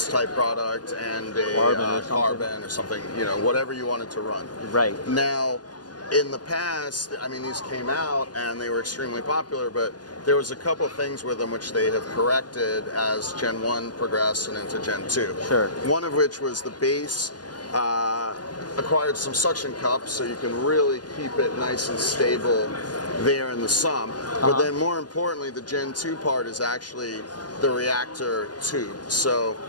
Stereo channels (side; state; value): right; late; 0.69 ms